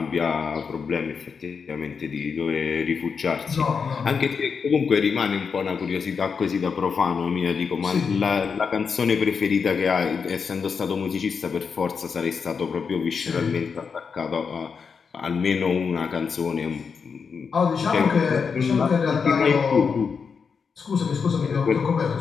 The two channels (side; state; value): right; quieter; 5.8 dB